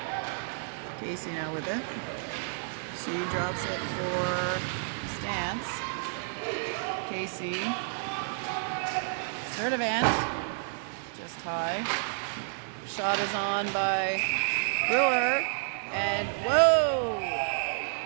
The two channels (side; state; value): left; silent; digital silence